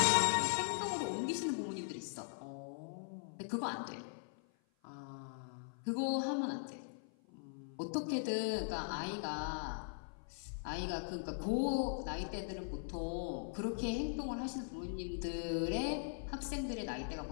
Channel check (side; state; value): right; silent; 51 dB below the other